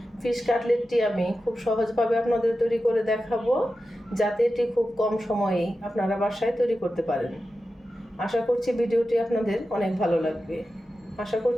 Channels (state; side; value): normal; both; correlation 0.92